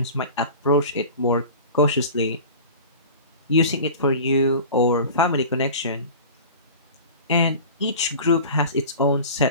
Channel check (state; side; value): inverted; both; correlation -0.37